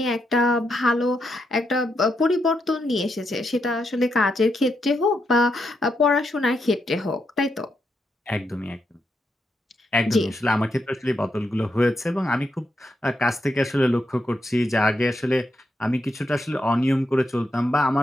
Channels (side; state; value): both; normal; correlation 0.82